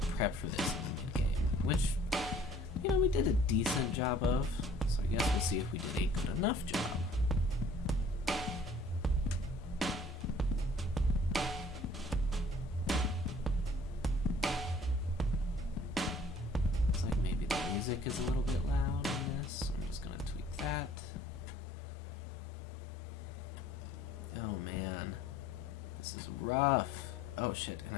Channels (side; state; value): both; normal; correlation 0.54